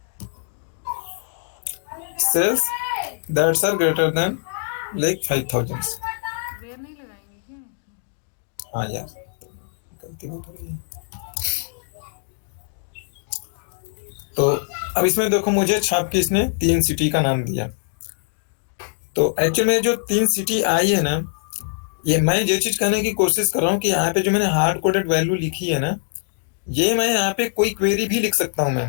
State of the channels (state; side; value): silent; right; digital silence